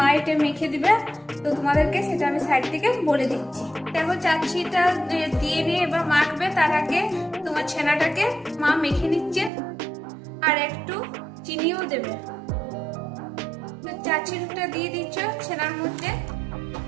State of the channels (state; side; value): drops out; left; at 9.5 s